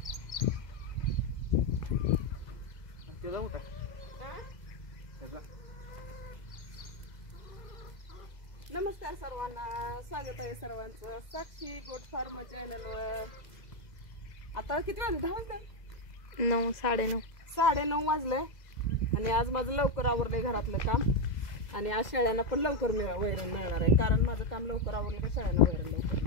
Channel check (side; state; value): right; late; 2.0 ms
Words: नमस्कार सर्वांना, स्वागत आहे सर्वांचं साक्षी गोट फार्म चॅनलवर. आता किती वाजले? 10 वाजले? 9, 9:30. 9:30 वाजले आणि आज माझं लवकर आवरलंय घरातलं काम. आणि आज शेळ्यांना पण लवकर वैरण मिळणार आहे, कारण माझं काम लवकर आवरलं का शेळ्यांना वैरण लवकर